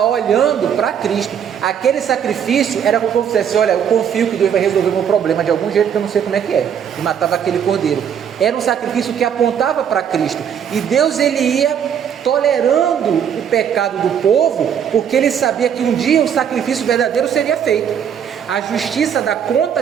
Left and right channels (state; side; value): quieter; left; 8.4 dB